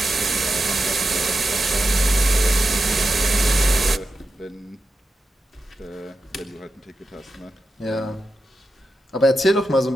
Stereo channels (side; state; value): both; normal; correlation 0.90